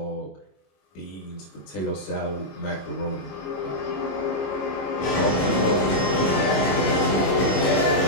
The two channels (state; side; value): late; right; 22 ms